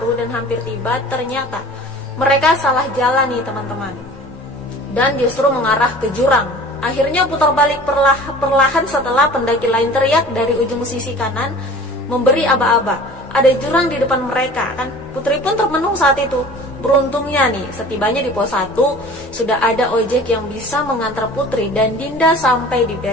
dan hampir tiba, ternyata mereka salah jalan nih teman-teman, dan justru mengarah ke jurang. Akhirnya putar balik perlahan setelah pendaki lain teriak dari ujung sisi kanan memberi aba-aba. Ada jurang di depan mereka kan. Putri pun termenung saat itu. Beruntungnya nih, setibanya di pos 1 sudah ada ojek yang bisa mengantar Putri dan Dinda sampai di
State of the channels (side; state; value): both; normal; correlation 0.43